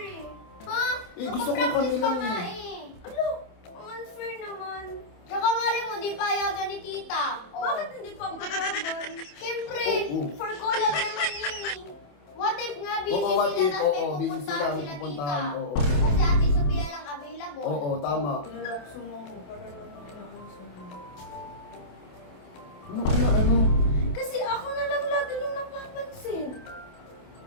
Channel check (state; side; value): late; right; 27 ms